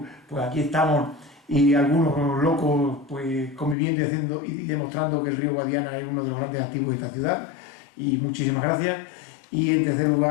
pues aquí estamos y algunos locos pues conviviendo y haciendo y demostrando que el río Guadiana es uno de los grandes activos de esta ciudad. Y muchísimas gracias. Y en tercer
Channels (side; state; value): right; drops out; at 3.8 s